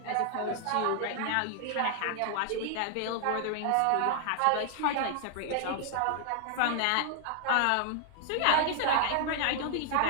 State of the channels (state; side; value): different; both; correlation 0.00